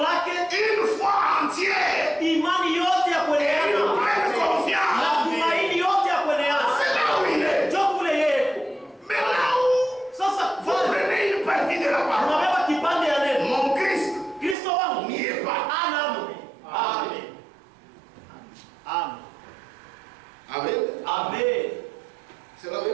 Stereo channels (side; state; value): left; drops out; at 14.6 s